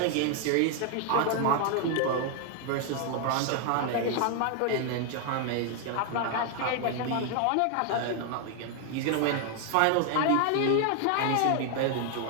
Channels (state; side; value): different; both; correlation 0.00